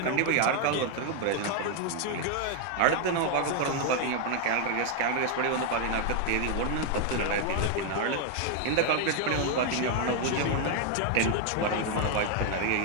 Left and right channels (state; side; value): different; both; correlation 0.01